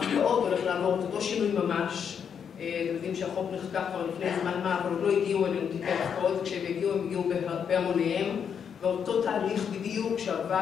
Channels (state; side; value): quieter; right; 7.5 dB